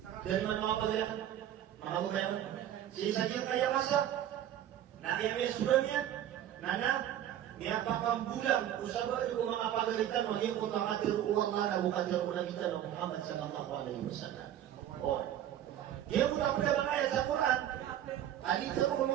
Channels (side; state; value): left; quieter; 11.2 dB